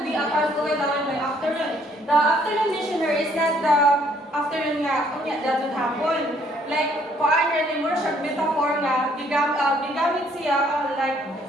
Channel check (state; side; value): normal; both; correlation 0.65